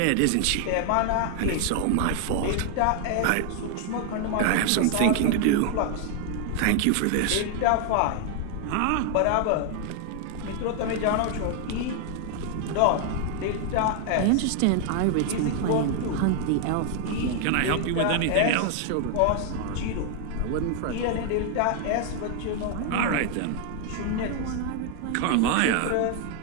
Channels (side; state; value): both; different; correlation 0.00